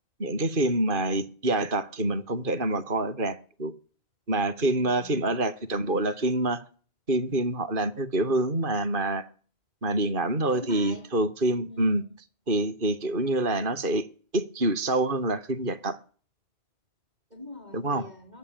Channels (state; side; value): late; left; 2.5 ms